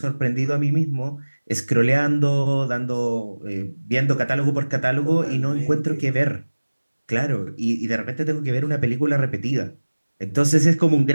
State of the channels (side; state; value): both; inverted; correlation -1.00